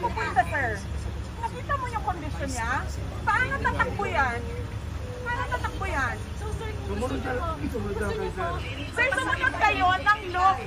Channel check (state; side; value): identical; both; correlation 1.00